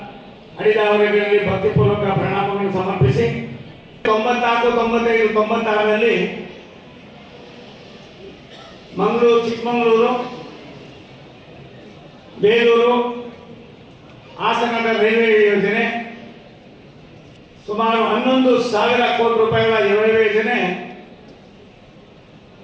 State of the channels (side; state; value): both; identical; correlation 1.00